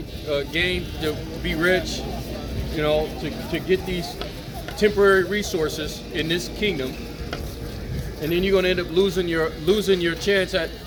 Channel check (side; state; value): both; identical; correlation 1.00